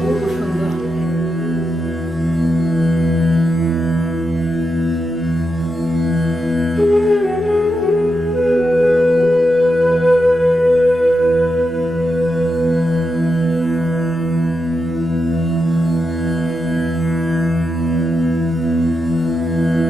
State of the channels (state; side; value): normal; both; correlation 0.86